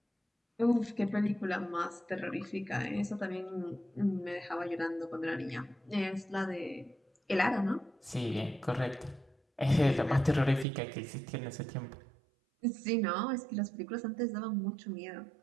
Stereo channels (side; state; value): left; drops out; at 10.7 s